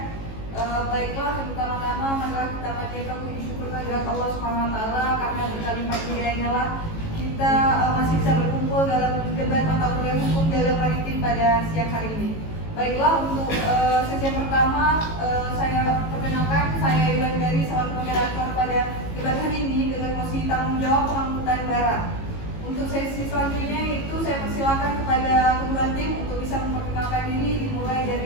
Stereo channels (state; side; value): late; right; 18 ms